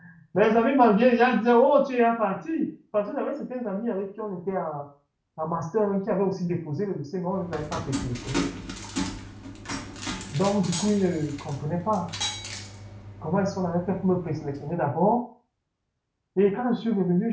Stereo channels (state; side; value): identical; both; correlation 1.00